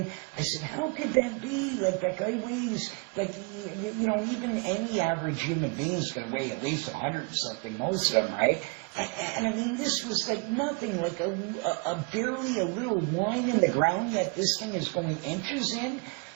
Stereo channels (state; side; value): quieter; left; 32.2 dB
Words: I said, how could that be? Like, that guy weighs, like, you know, even any average human being is going to weigh at least 100 and something, most of them, right? And I mean, this was like nothing, like a barely a little line in the ground, yet this thing is going inches in.